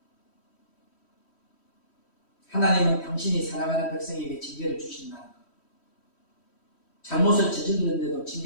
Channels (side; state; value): right; late; 3.1 ms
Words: 하나님은 당신이 사랑하는 백성에게 징계를 주신다는 것. 잘못을 저질렀는데도